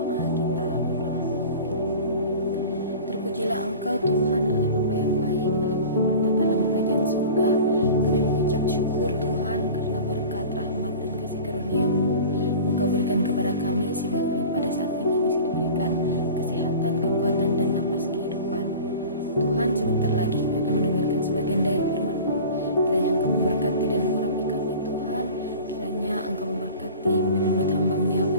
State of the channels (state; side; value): inverted; both; correlation -0.38